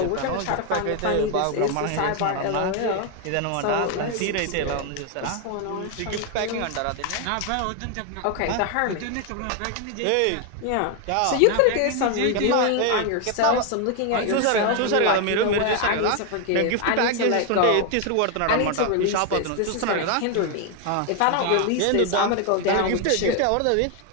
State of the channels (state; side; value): different; both; correlation 0.01